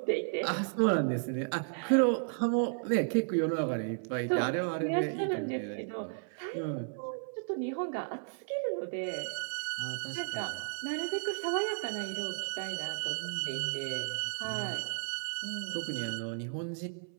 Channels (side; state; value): left; silent; 55 dB below the other